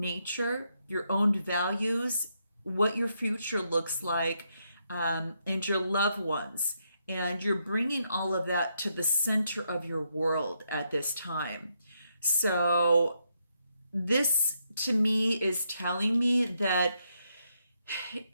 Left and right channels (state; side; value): inverted; both; correlation -0.78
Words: your own values, what your future looks like, and your loved ones. And you're bringing all of that to the center of your world at this time. So this to me is telling me that